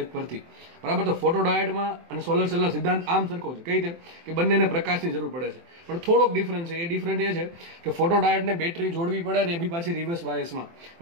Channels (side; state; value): left; late; 24 ms